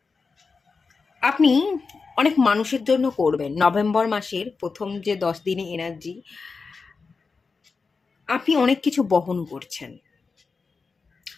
আপনি অনেক মানুষের জন্য করবেন। নভেম্বর মাসের প্রথম যে 10 দিনে এনার্জি, আপনি অনেক কিছু বহন করছেন,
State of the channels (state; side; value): quieter; right; 4.6 dB